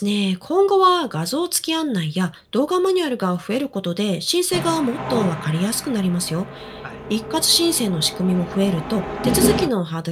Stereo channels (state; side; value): identical; both; correlation 1.00